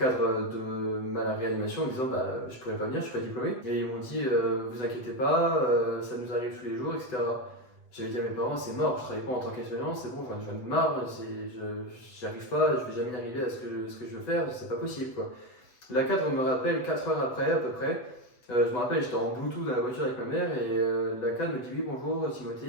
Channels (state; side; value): late; right; 8.0 ms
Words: de ma réanimation en disant, bah, je pourrais pas venir, je suis pas diplômé. Et ils m'ont dit, vous inquiétez pas, ça nous arrive tous les jours, etc. J'avais dit à mes parents, c'est mort, je travaille pas en tant qu'aide-soignant, c'est bon, j'en ai marre, j'y arrive pas, je vais jamais y arriver à ce que je veux faire, c'est pas possible quoi. La cadre me rappelle 4 heures après à peu près. Je me rappelle, j'étais en Bluetooth dans la voiture avec ma mère et la cadre me dit oui bonjour